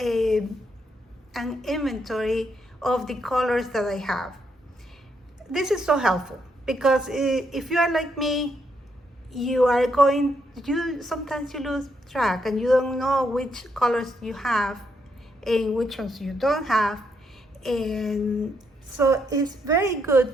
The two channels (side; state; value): both; normal; correlation 0.77